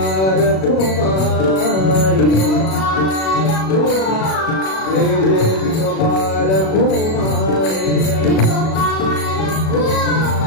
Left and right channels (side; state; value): right; late; 37 ms